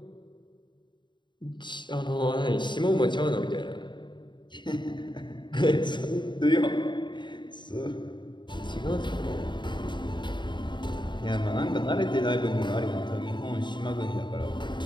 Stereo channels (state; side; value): late; right; 0.22 ms